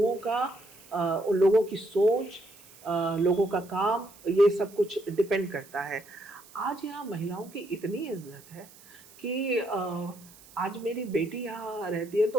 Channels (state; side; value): noise; right; hiss, 23 dB below the sound